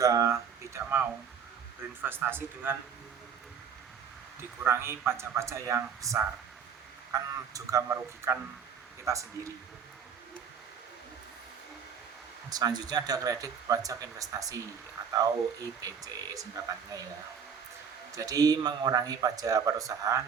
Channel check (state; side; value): quieter; left; 7.0 dB